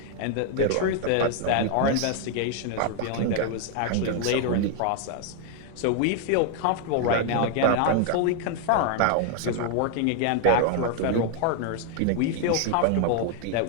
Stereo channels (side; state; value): both; different; correlation 0.00